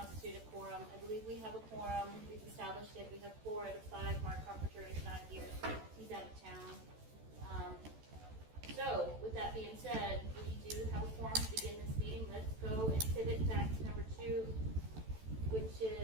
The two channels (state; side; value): late; left; 14 ms